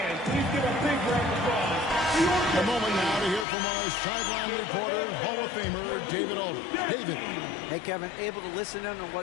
please give a big round of applause. A moment now to hear from our sideline reporter, Hall of Famer David Aldridge. David. Hey, Kevin, able to listen in on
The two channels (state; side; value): drops out; right; at 3.5 s